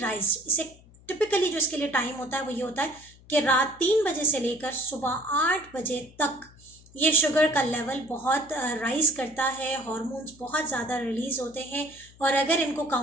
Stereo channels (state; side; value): noise; left; hum, 25 dB below the sound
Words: इसे टिपिकली जो इसके लिए टाइम होता है वो ये होता है कि रात 3 बजे से लेकर सुबह 8 बजे तक ये शुगर का लेवल बहुत राइज करता है, हार्मोन्स बहुत ज़्यादा रिलीज़ होते हैं, और अगर इनको